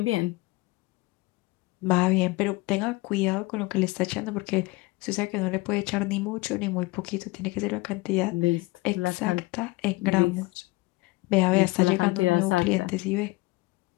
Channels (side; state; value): right; quieter; 22.3 dB